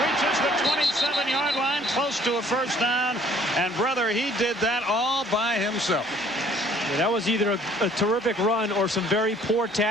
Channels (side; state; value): both; normal; correlation 0.58